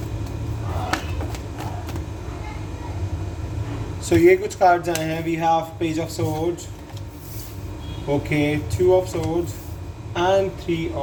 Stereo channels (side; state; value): both; identical; correlation 1.00